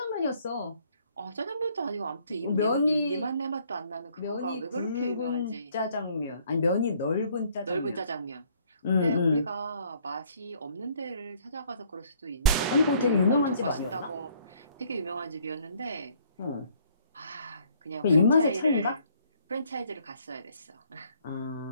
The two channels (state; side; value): inverted; both; correlation -0.62